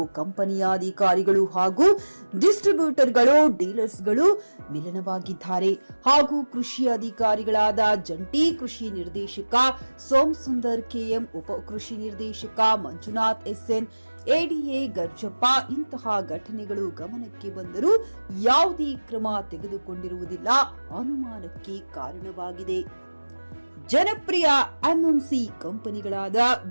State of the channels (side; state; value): both; inverted; correlation -1.00